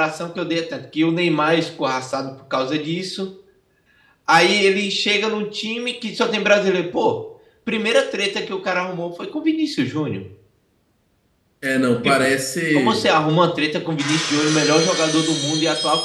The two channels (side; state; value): both; identical; correlation 1.00